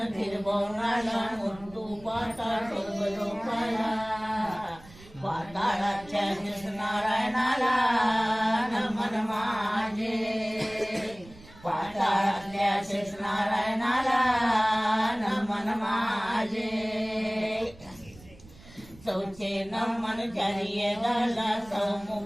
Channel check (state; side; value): noise; right; rumble, 22 dB below the sound